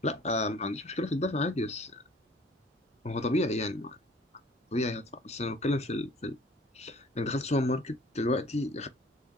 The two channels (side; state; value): both; normal; correlation 0.51